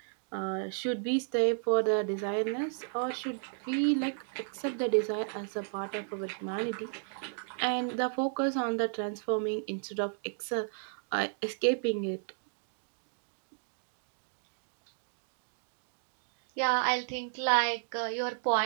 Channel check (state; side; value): silent; left; digital silence